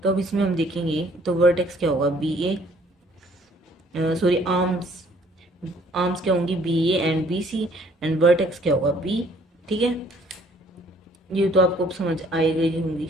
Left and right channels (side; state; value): both; normal; correlation 0.60